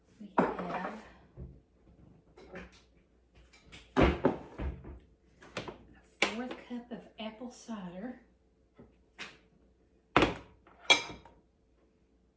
we have a 1/4 cup of apple cider.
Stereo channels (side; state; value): both; identical; correlation 1.00